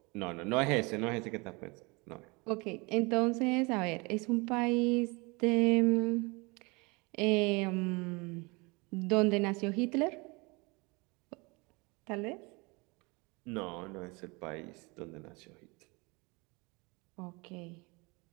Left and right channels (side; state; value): left; quieter; 27.2 dB